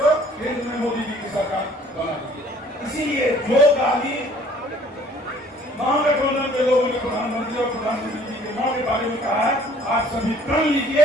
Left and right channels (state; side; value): normal; both; correlation 0.55